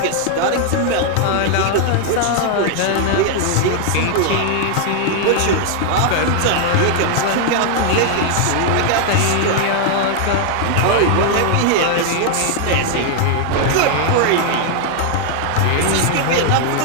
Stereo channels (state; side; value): different; both; correlation 0.00